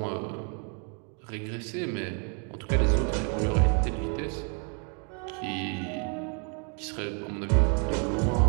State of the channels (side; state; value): left; quieter; 39.5 dB